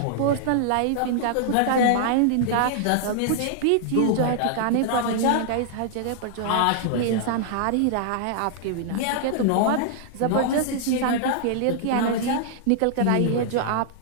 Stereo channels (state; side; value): different; both; correlation -0.01